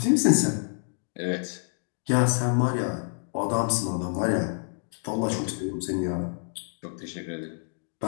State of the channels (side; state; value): right; silent; digital silence